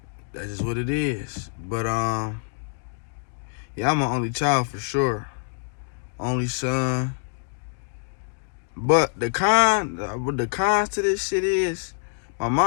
that's just what it is. But yeah, I'm an only child for sure. Only son. But the cons to this shit is my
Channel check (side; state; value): right; silent; digital silence